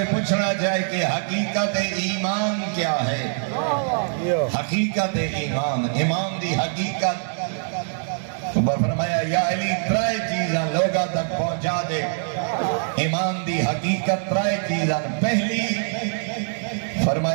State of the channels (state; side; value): silent; left; 63 dB below the other